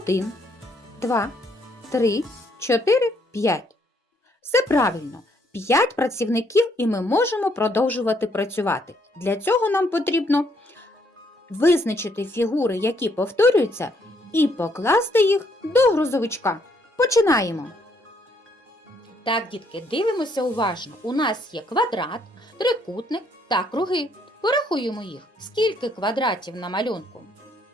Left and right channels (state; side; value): normal; both; correlation 0.70